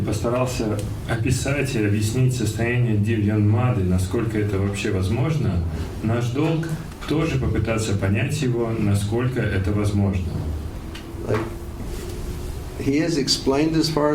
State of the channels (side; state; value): both; identical; correlation 1.00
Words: постарался описать и объяснить состояние Дивьянмады, насколько это вообще возможно, наш долг тоже попытаться понять его, насколько это возможно. Like, he has explained as far